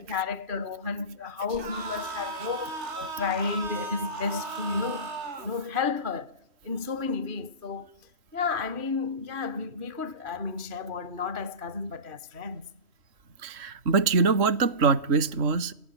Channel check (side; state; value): left; late; 3.1 ms